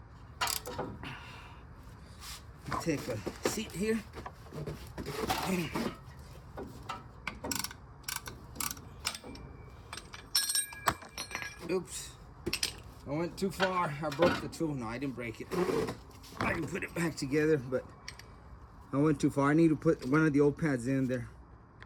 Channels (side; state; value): both; identical; correlation 1.00